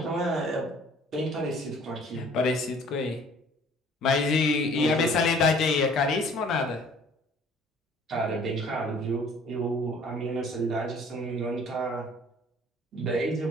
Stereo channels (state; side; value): normal; both; correlation 0.54